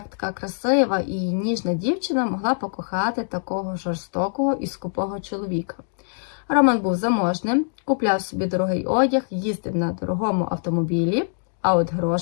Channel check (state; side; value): silent; right; digital silence